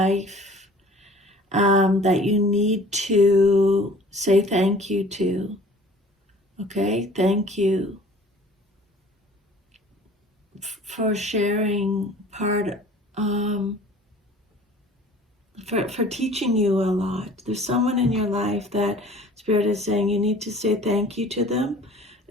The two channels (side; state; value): both; normal; correlation 0.49